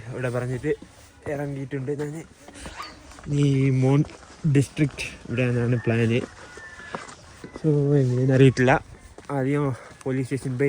ഇവിടെ പറഞ്ഞിട്ട് ഇറങ്ങിയിട്ടുണ്ട് ഞാൻ. ഈ മോൺ ഡിസ്ട്രിക്റ്റ് ഇവിടെയാണ് പ്ലാന്. സോ എങ്ങനെയെന്ന് അറിയിട്ടില്ല. ആദ്യം പോലീസ് സ്റ്റേഷൻ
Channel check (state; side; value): identical; both; correlation 1.00